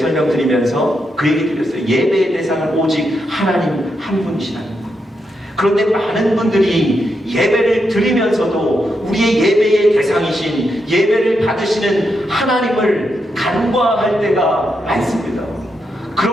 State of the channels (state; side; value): normal; both; correlation 0.83